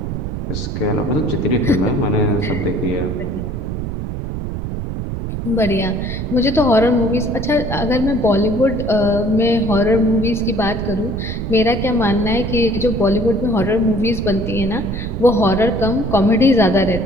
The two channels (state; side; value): noise; right; rumble, 5 dB below the sound